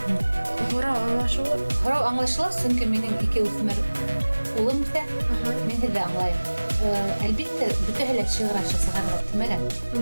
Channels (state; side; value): inverted; both; correlation -1.00